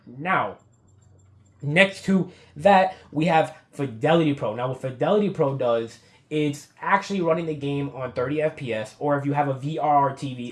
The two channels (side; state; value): both; identical; correlation 1.00